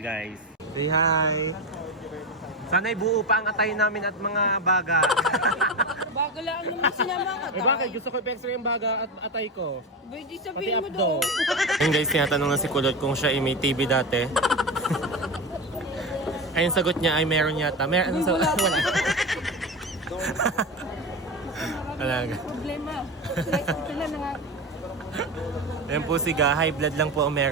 Say hi! Sana'y buo pa ang atay namin at mga baga. Bago lang naman sinama ka. Bakit? Gusto ko i-extra yung baga at atay ko. Pwede Pati sabihin mo abdo. doon. Ayun guys, tinatanong na si Kulot kung siya ay may TV dati. Ayun sagot niya ay meron yata. Meron sa wala. Wala. Problema. Ito na nga. Ayan po si Ga, high blood lang po ang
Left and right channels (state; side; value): normal; both; correlation 0.20